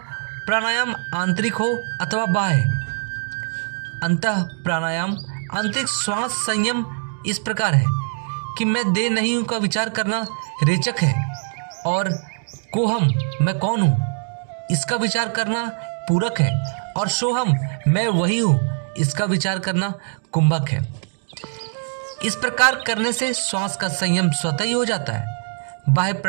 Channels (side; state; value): left; silent; 64 dB below the other